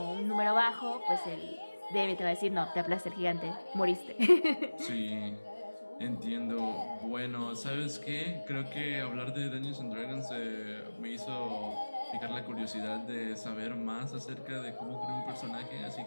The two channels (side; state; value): both; inverted; correlation -1.00